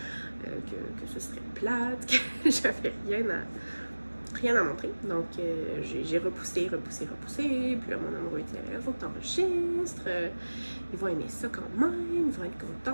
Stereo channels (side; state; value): both; inverted; correlation -1.00